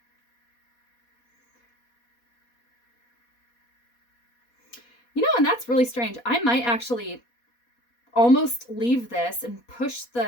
You know, and that's really strange. I might actually almost leave this and push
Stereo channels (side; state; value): right; late; 4.2 ms